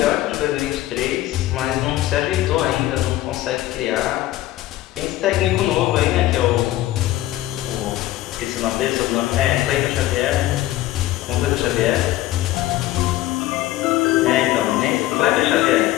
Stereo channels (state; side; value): quieter; right; 15.4 dB